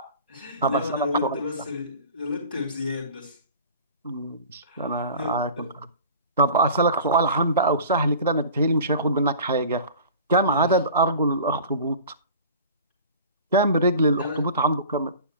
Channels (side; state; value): both; inverted; correlation -0.41